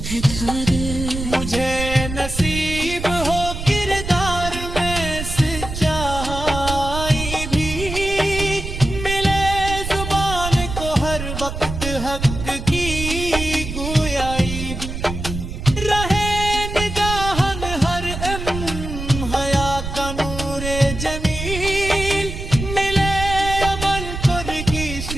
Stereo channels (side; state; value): right; noise; rumble, 7 dB below the sound